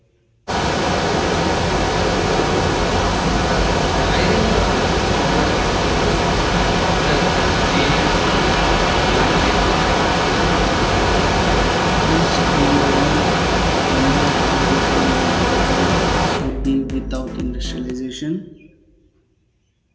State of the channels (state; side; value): identical; both; correlation 1.00